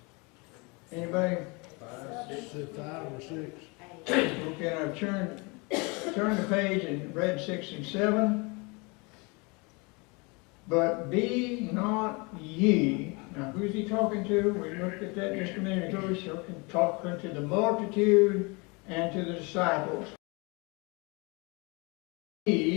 Anybody? 5 or 6. Okay, I've turned the page and read 6 and 7. But be not ye. Now, who's he talking to? We looked at that just a minute ago. He's talking to the multitude and to the disciples.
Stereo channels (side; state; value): right; quieter; 28.8 dB